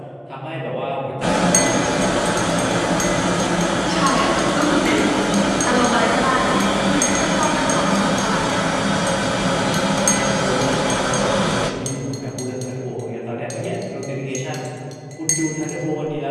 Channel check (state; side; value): identical; both; correlation 1.00